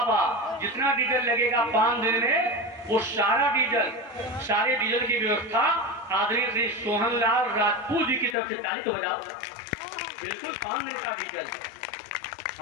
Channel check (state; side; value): drops out; right; at 8.3 s